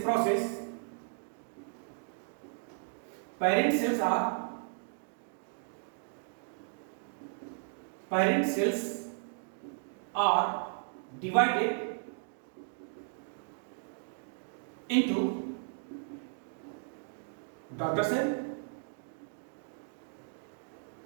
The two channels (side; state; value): left; silent; digital silence